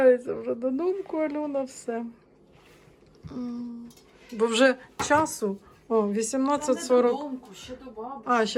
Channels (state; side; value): identical; both; correlation 1.00